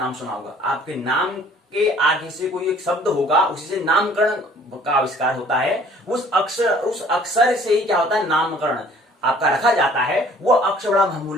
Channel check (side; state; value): both; normal; correlation 0.55